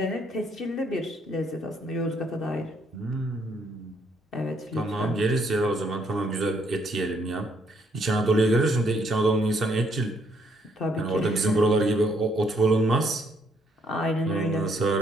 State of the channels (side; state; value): both; normal; correlation 0.70